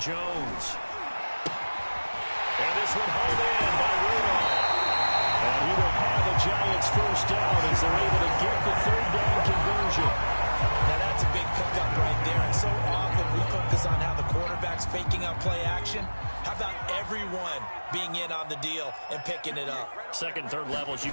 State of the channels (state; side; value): inverted; both; correlation -1.00